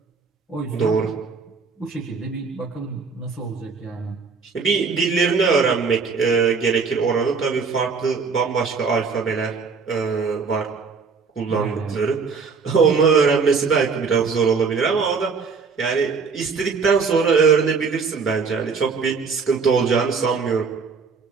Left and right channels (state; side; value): quieter; left; 5.2 dB